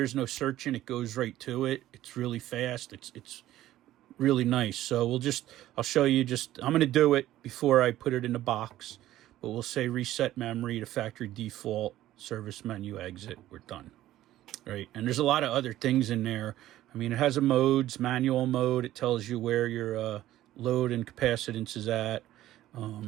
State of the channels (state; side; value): quieter; left; 14.2 dB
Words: no searching. It goes right to it. It's really fast. It's really nice. So I'll show you I'm going to do it before I put it in the box, but we'll say reset memory to factory default, service menu, exit. We're done. Right. And there's a lot of other things in there. I mean, it has a modes, manual mode. It tells you where your load and capacitance is at.